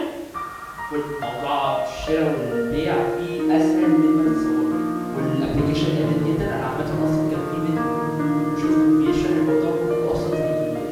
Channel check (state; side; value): identical; both; correlation 1.00